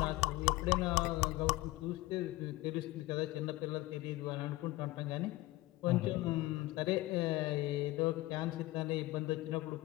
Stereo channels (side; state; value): right; quieter; 18.9 dB